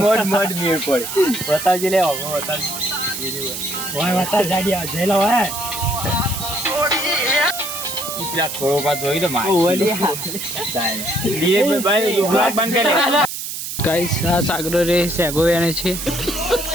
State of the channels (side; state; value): right; noise; hiss, 6 dB below the sound